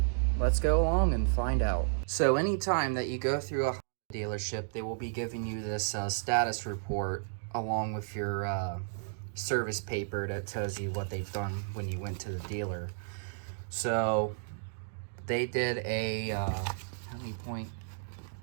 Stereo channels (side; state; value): left; silent; digital silence